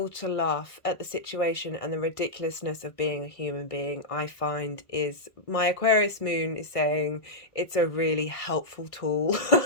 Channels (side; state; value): right; late; 1.5 ms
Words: to laugh at the situation and the ridiculousness of being a human being, I find is, my Aquarius moon is saying it's a really helpful tool